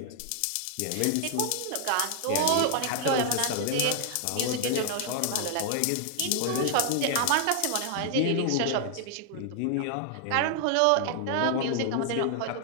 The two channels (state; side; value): different; both; correlation 0.00